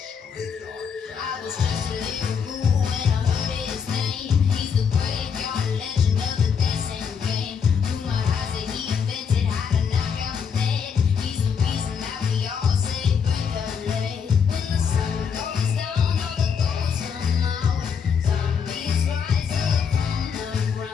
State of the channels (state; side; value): quieter; right; 6.7 dB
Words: graveyard band. I was just a little fool when I heard his name. He's the graveyard legend of the dancing game. Rumor has it he invented how to knock out the dead. He's the reason that we all say break a leg. When the sun goes down, all the ghosts come out. Zombies rise up from the